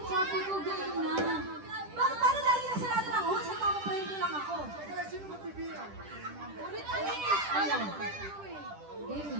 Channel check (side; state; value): left; late; 10 ms